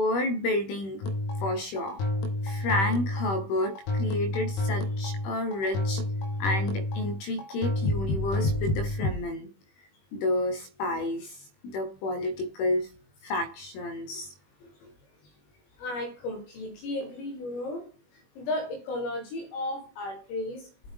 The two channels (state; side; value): late; right; 21 ms